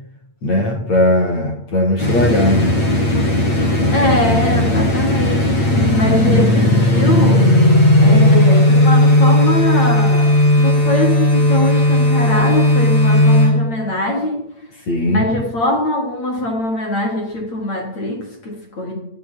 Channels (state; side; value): late; right; 8.8 ms